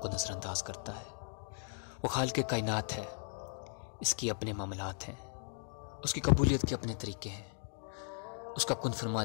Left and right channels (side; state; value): right; silent; 53 dB below the other